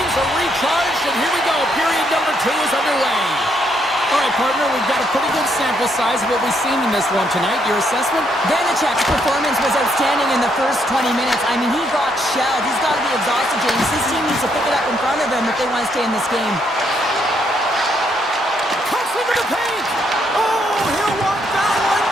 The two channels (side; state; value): both; normal; correlation 0.74